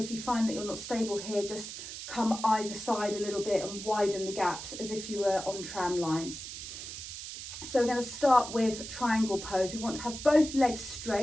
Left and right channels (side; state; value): right; noise; hiss, 9 dB below the sound